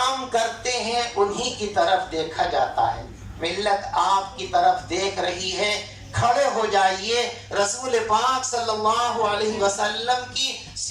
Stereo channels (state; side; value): identical; both; correlation 1.00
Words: کرتے ہیں انہی کی طرف دیکھا جاتا ہے. ملت آپ کی طرف دیکھ رہی ہے. کھڑے ہو جائیے، رسول پاک صلی اللہ علیہ وسلم کی